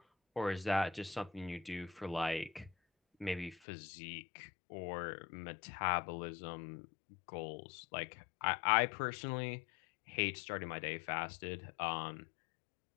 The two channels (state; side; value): drops out; right; at 3.6 s